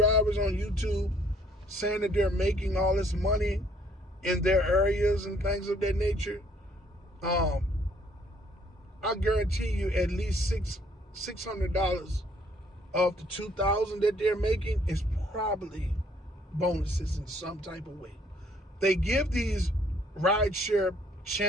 on YouTube saying that they're making all this money in their areas and things of that nature, I guarantee you at least $600 of the $2,000 that they're making is probably bonuses in some type of way. They give these rideshare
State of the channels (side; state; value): both; normal; correlation 0.63